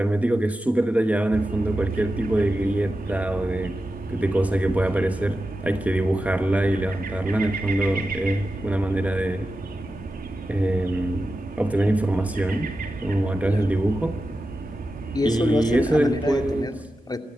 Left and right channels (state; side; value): normal; both; correlation 0.91